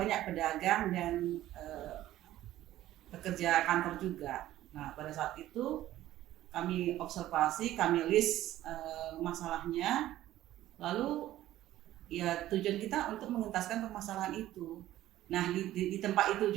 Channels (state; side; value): quieter; left; 14.2 dB